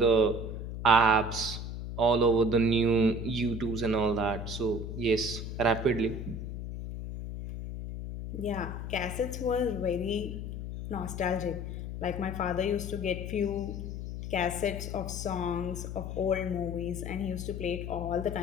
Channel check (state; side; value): noise; left; hum, 6 dB below the sound